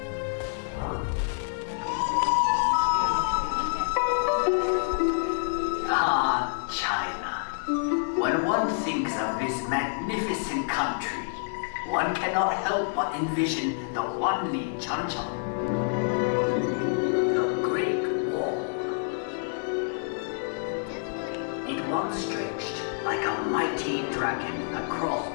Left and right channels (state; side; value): silent; right; digital silence